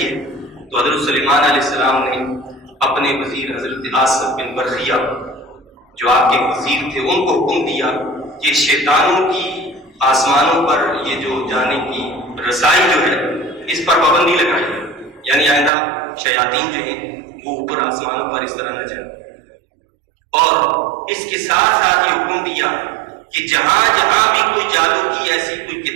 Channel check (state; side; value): drops out; left; at 15.7 s